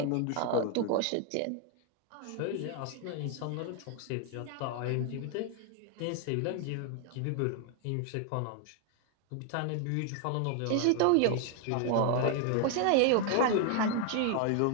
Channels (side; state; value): both; different; correlation 0.00